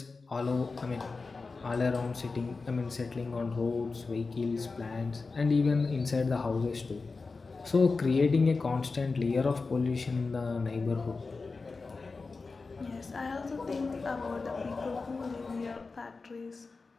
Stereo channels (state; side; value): quieter; right; 4.1 dB